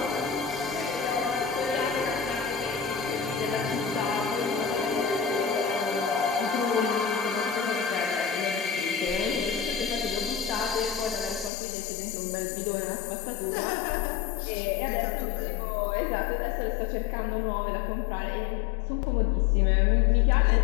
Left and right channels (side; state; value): right; drops out; at 11.5 s